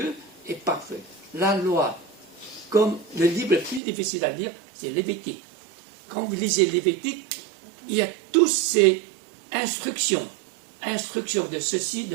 est parfaite. La loi, comme le livre le plus difficile à lire, c'est Lévitique. Quand vous lisez Lévitique, il y a toutes ces instructions de ceci,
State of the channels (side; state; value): left; drops out; at 3.8 s